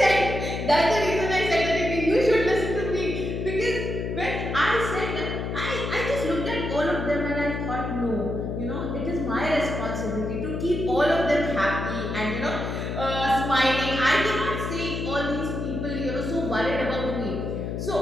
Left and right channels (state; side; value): noise; left; hum, 4 dB below the sound